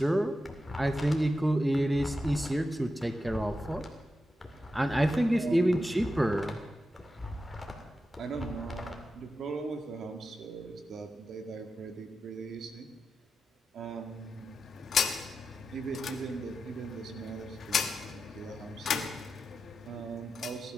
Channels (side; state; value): both; normal; correlation 0.90